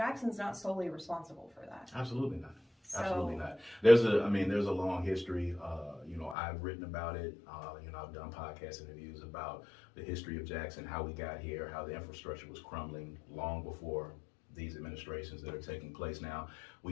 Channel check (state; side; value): drops out; right; at 6.4 s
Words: not solely responsible for that. Absolutely not. So, Absolutely not. There's a long history. I've written about it. I've done podcast interviews about the history of Jackson, how we got here, how the infrastructure was crumbling long before these administrations that are taking place now.